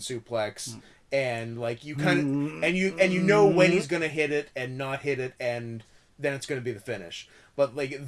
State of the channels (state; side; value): identical; both; correlation 1.00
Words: and like you kind of and you know when he's gonna hit it and not hit it, and then it's gonna be the finish. But like